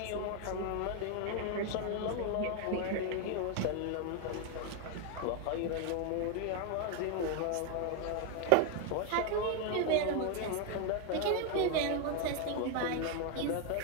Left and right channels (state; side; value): different; both; correlation 0.01